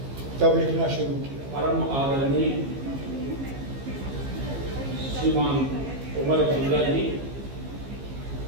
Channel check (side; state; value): left; late; 15 ms